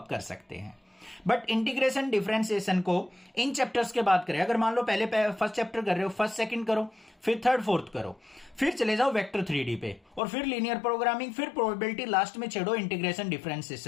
कर सकते हैं। बट इंटीग्रेशन डिफरेंशिएशन को इन चैप्टर्स के बाद करें। अगर मान लो पहले फर्स्ट चैप्टर कर रहे हो, फर्स्ट सेकंड करो, फिर थर्ड फोर्थ करो, फिर चले जाओ वेक्टर 3D पे, और फिर लीनियर प्रोग्रामिंग, फिर प्रोबेबिलिटी, लास्ट में छेड़ो इंटीग्रेशन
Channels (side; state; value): right; drops out; at 10.2 s